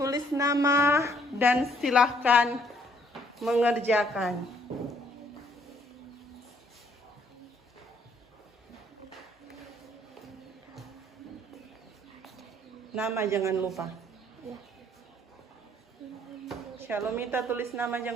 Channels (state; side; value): normal; both; correlation 0.64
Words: nama dan silahkan mengerjakan. Nama jangan lupa. Shalomita tulis nama